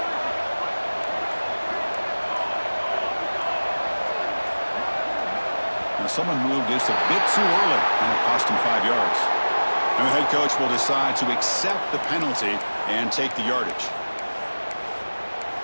Now someone moved just a bit too early, and it cost him 5 yards. And the head coach will decide to accept the penalty and take the yardage.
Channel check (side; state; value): both; inverted; correlation -1.00